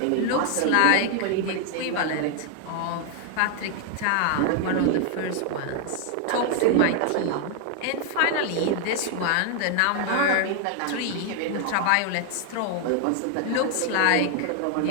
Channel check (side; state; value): both; different; correlation 0.00